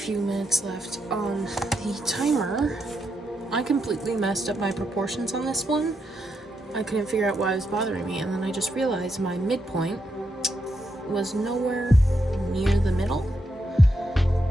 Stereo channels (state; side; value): normal; both; correlation 0.82